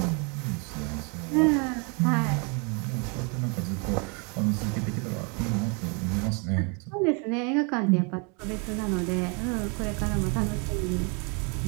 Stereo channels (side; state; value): left; quieter; 33.7 dB